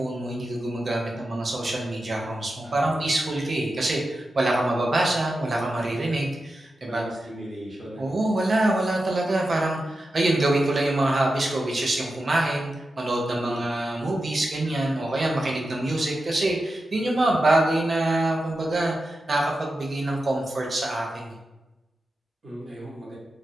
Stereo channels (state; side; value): normal; both; correlation 0.91